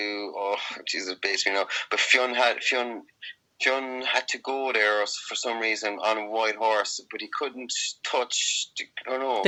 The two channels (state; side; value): identical; both; correlation 1.00